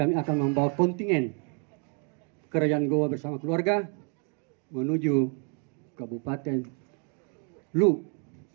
akan membawa kontingen Kerajaan Goa bersama keluarga menuju Kabupaten Lu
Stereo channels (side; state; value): left; quieter; 38.6 dB